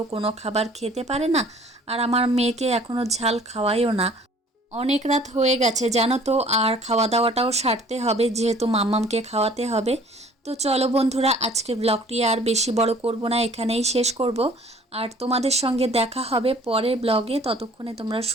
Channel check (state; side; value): normal; both; correlation 0.53